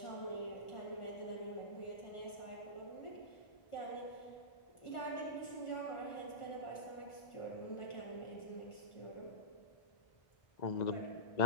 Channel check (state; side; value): late; right; 1.4 ms